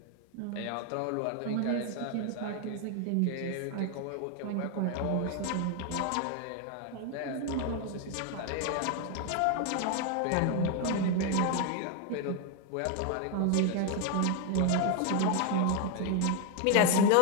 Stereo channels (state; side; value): different; both; correlation 0.01